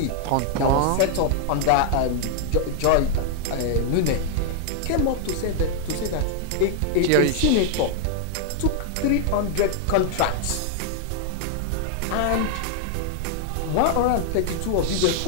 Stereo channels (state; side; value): different; both; correlation 0.00